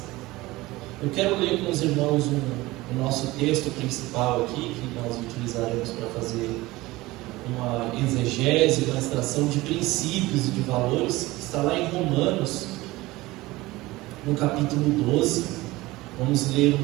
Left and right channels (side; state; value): left; quieter; 19.6 dB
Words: Eu quero ler com os irmãos o nosso texto principal aqui, que nós utilizaremos para fazer uma exegese, uma extração de princípios e de valores, que está lá em Romanos, no capítulo 12, vamos ler